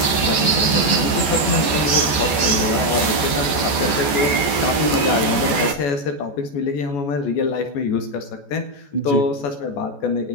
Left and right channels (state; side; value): late; right; 14 ms